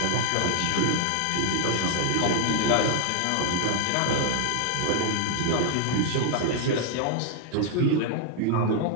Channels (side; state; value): both; different; correlation 0.00